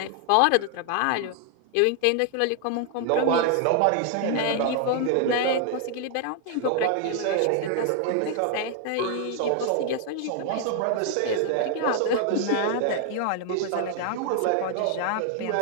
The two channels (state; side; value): different; both; correlation 0.00